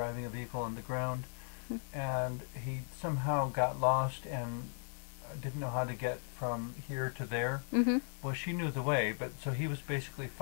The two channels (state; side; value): silent; right; 53 dB below the other